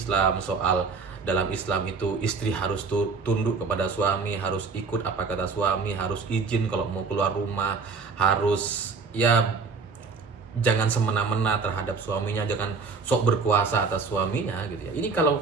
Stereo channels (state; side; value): quieter; left; 4.7 dB